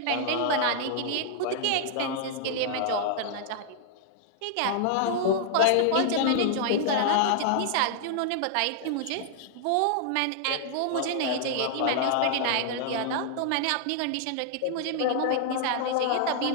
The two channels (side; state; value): both; different; correlation -0.01